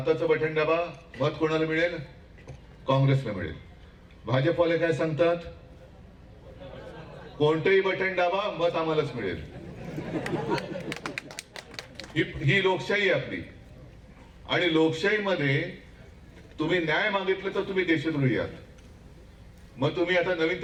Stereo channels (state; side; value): identical; both; correlation 1.00